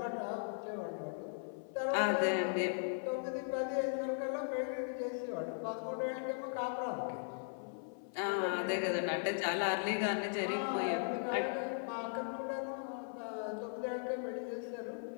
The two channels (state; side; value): silent; right; 52 dB below the other